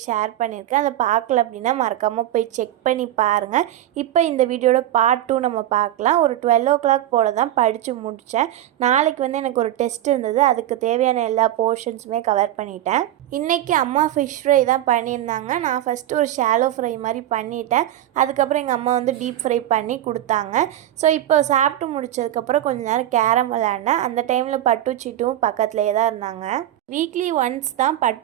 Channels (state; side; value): quieter; left; 12.8 dB